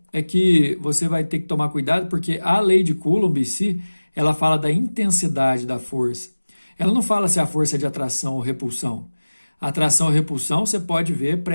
é que você vai ter que tomar cuidado, porque a lei de Coulomb em si, ela fala da intensidade da força. Ela não fala se a força é de atração ou repulsão. A atração ou repulsão você pode ver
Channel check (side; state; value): both; inverted; correlation -1.00